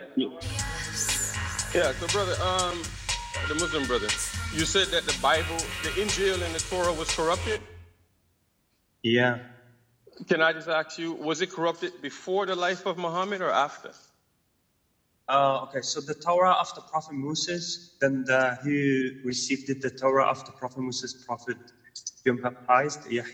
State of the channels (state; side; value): identical; both; correlation 1.00